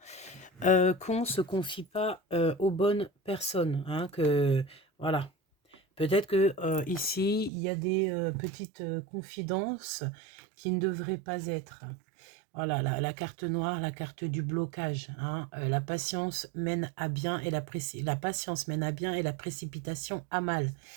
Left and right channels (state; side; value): drops out; left; at 7.5 s